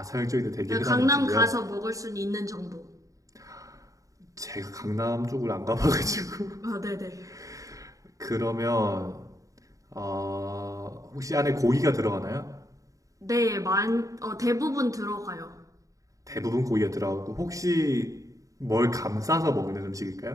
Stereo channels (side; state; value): left; late; 0.16 ms